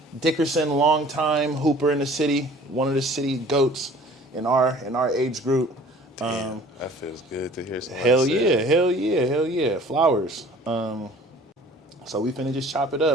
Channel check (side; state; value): both; normal; correlation 0.49